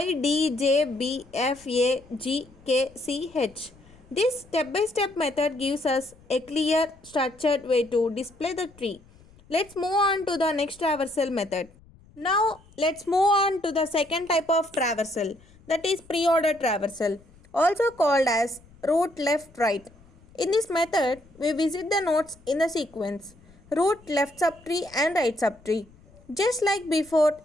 D, J, B, F, A, G, K, C, H. This step-by-step method gives us a clear, structured way to display the tree. Let's move on to the next traversal method. Now, let's move on to the second type of traversal, that is pre-order traversal, also called as root left right. In this method, we visit the nodes in the sequence root left subtree and right subtree. Just like before,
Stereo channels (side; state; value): left; noise; rumble, 26 dB below the sound